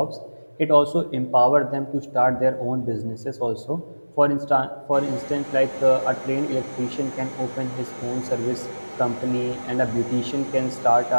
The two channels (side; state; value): both; inverted; correlation -1.00